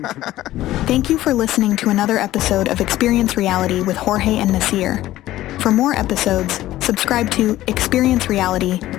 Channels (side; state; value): right; quieter; 15.1 dB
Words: Thank you for listening to another episode of Experience Reality with Jorge and Nasir. For more episodes, subscribe to Experience Reality